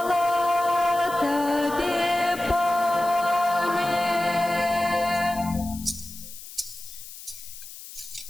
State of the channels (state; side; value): noise; left; hiss, 14 dB below the sound